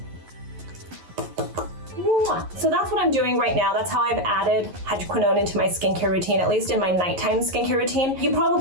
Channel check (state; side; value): late; left; 11 ms